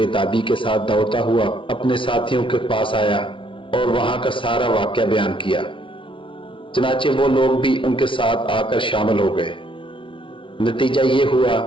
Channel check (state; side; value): late; right; 0.25 ms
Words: تابی کے ساتھ دوڑتا ہوا اپنے ساتھیوں کے پاس آیا اور وہاں کا سارا واقعہ بیان کیا. چنانچہ وہ لوگ بھی ان کے ساتھ آ کر شامل ہو گئے. نتیجہ یہ ہوا